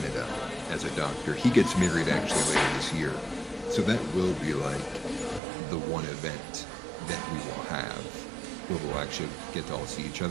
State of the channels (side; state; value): left; drops out; at 5.4 s